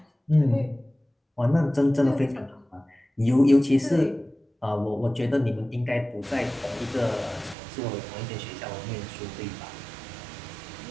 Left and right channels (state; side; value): drops out; left; at 7.6 s